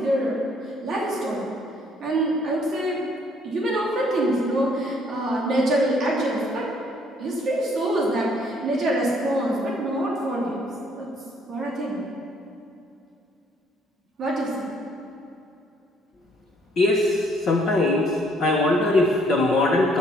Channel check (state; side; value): normal; both; correlation 0.64